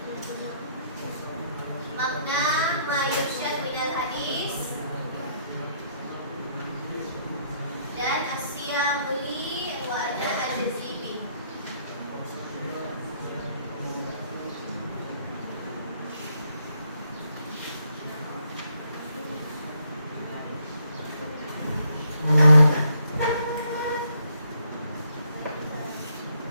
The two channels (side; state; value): both; inverted; correlation -0.70